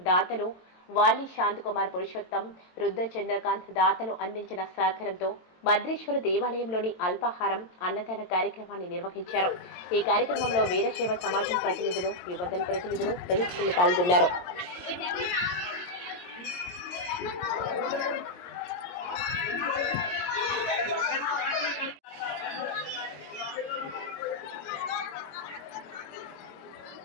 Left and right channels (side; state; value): right; late; 22 ms